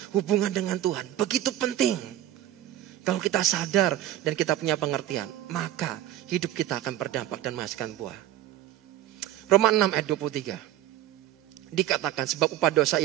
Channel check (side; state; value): left; quieter; 12.8 dB